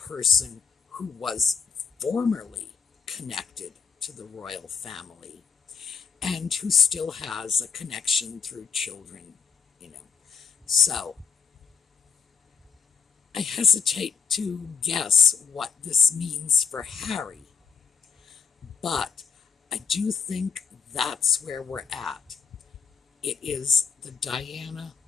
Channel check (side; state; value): right; quieter; 6.1 dB